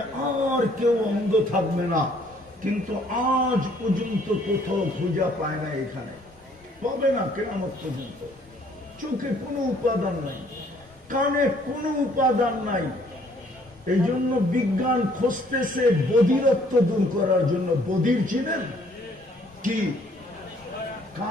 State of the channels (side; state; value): both; normal; correlation 0.62